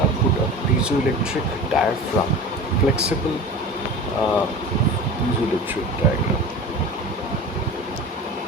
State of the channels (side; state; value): both; normal; correlation 0.34